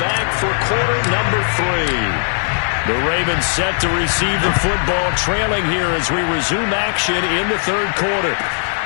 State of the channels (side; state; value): right; silent; digital silence